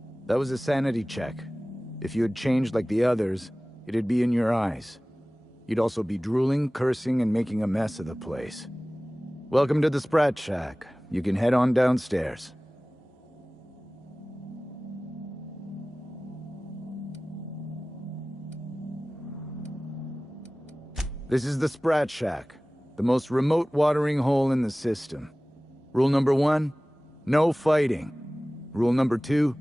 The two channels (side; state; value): both; normal; correlation 0.98